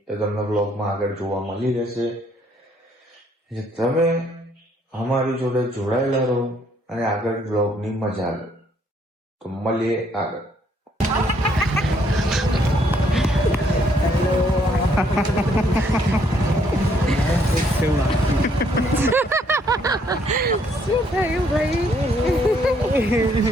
એ તમને બ્લોગમાં આગળ જોવા મળી રહેશે. તમે અમારી જોડે જોડાયેલા રહો અને આગળ બ્લોગની મજા લો. તો મળીએ આગળ. શું થયું ભાઈ?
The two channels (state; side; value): normal; both; correlation 0.68